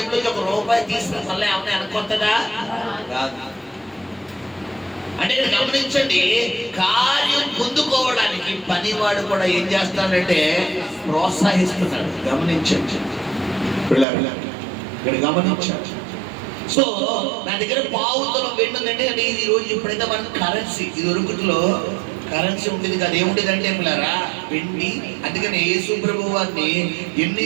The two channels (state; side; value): drops out; left; at 14.1 s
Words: ₹1 తీసుకుని మళ్ళీ ఏమన్నా వెనకొస్తుందా? కాదు. అంటే గమనించండి, కార్యం పొందుకోవడానికి పనివాడు కూడా ఏం చేస్తాడంటే ప్రోత్సహిస్తున్నాడు. గమనించండి ఇక్కడ గమనించాడు. సో నా దగ్గర పావుతులం వెండి ఉందంటే అంటే ఇది రోజు ఇప్పుడైతే మనకు కరెన్సీ, ఇది ఒరుగుట్లో కరెన్సీ ఉండేది కదా. ఏముండేది అంటే పిల్లరా వెండి. అందుకని యేసు ప్రభువు వారిని